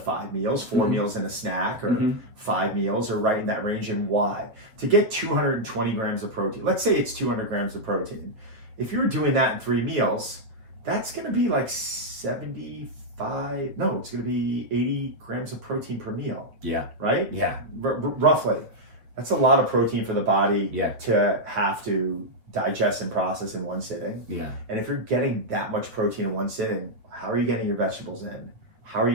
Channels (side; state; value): left; late; 8.6 ms